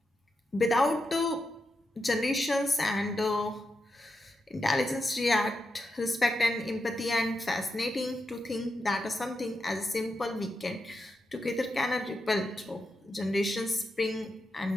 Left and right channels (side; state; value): both; normal; correlation 0.86